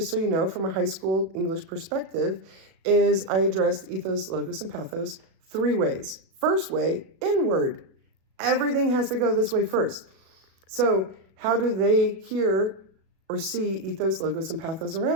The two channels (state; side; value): late; left; 37 ms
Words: so you know, from a high school English perspective, is I addressed ethos, logos, and pathos 3 ways. First way, inward. Everything has to go this way first. So how do they hear or see ethos, logos, and pathos